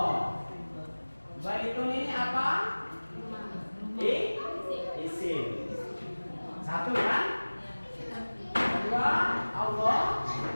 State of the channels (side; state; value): both; inverted; correlation -1.00